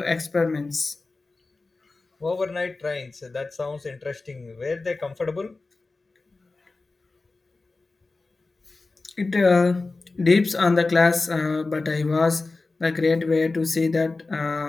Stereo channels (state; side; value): quieter; right; 3.6 dB